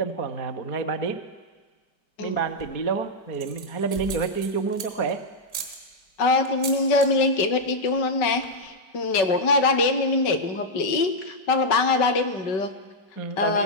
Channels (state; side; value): late; right; 5.2 ms